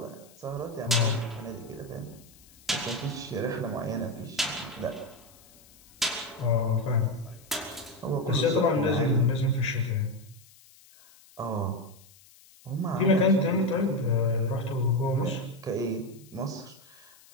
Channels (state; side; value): noise; left; hiss, 25 dB below the sound